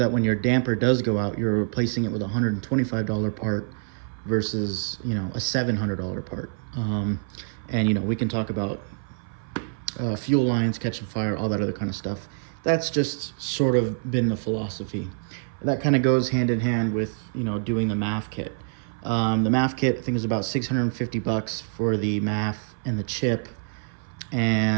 when your damper does go out, you're replacing it with a $125 part versus a $700 part. And we can talk about fuel lines catching fire, all that other kind of stuff. That's just sort of been the philosophy. That kind of goes hand in hand with doing the MAF kit. The MAF kit, I think, is about $650 for the MAF and the chip,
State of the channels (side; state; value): left; silent; 57 dB below the other